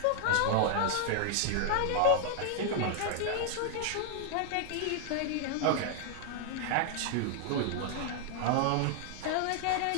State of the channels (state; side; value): different; both; correlation 0.00